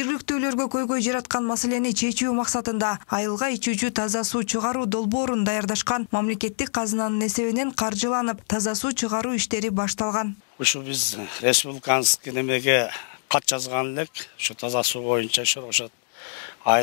көйгөй жараткан маселени чечүү максатында айылга ичүүчү таза суу чыгаруу долбоорун даярдашкан. Мамлекеттик казынанын эсебинен каржыланып, таза суу чыгаруу иштери башталган. Ушу биз республиканский немеге кат жазган элек, ушу таза суу боюнча Шоробашат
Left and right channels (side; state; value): right; silent; digital silence